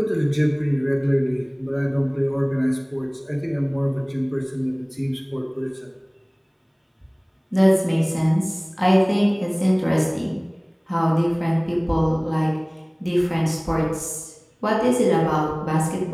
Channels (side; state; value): both; identical; correlation 1.00